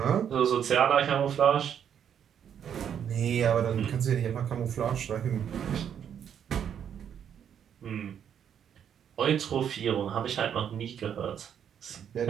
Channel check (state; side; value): quieter; left; 8.7 dB